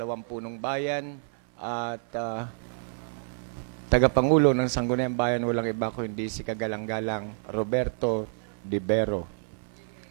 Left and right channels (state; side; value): silent; left; 59 dB below the other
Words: punong bayan at tagapangulo ng Sangguniang Bayan, walang iba kundi si kagalang-galang Roberto Dibero.